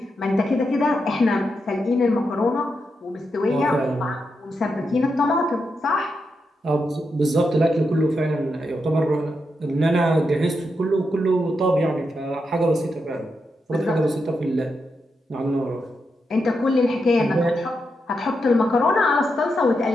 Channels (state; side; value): normal; both; correlation 0.85